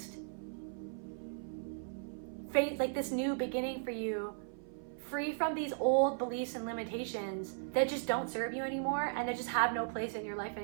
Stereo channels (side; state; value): left; silent; 53 dB below the other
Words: phase, like this new beginning for you, free from these old beliefs and limitations that just don't serve you anymore and that just have no place in your life